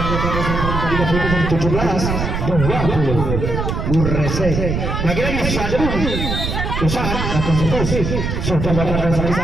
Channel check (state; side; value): noise; right; rumble, 2 dB below the sound